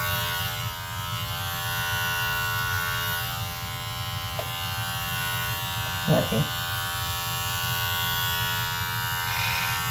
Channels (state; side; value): identical; both; correlation 1.00